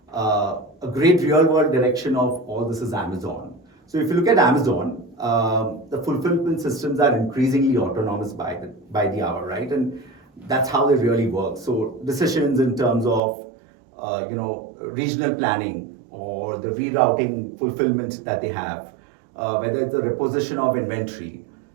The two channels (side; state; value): left; drops out; at 13.2 s